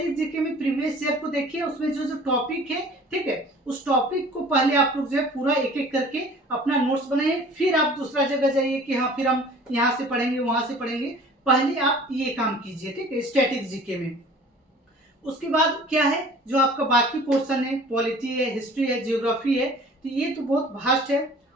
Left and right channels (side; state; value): both; normal; correlation 0.47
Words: जीके में प्रीवियस ईयर को देखिए, उसमें जो जो टॉपिक है, ठीक है, उस टॉपिक को पहले आप लोग जो है पूरा एक एक करके अपना नोट्स बनाइए, फिर आप दूसरा जगह जाइए कि हाँ फिर हम यहाँ से पढ़ेंगे वहां से पढ़ेंगे, पहले आप ये काम कीजिए। ठीक है, स्टैटिक जीके में। उसके बाद क्या है, जो आपका बाकी पोर्शन है, पॉलिटी है, हिस्ट्री है, जियोग्राफी है, तो ये तो बहुत वास्ट है,